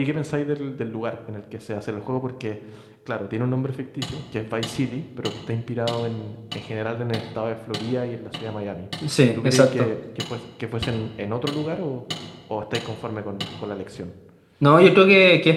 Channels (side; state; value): both; identical; correlation 1.00